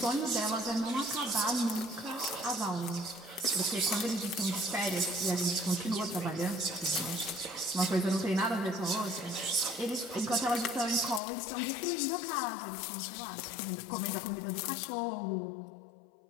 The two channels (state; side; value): drops out; right; at 11.2 s